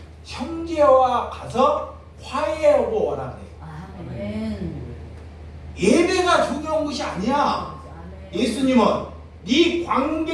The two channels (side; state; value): both; identical; correlation 1.00